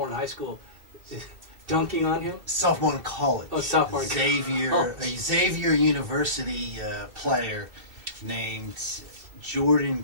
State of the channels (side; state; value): left; late; 2.7 ms